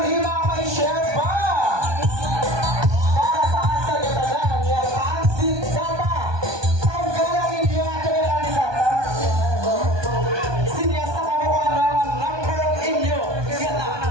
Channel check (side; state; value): left; late; 1.2 ms